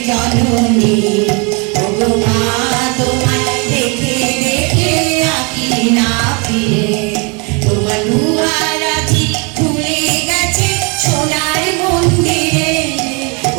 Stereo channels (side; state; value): left; quieter; 31.7 dB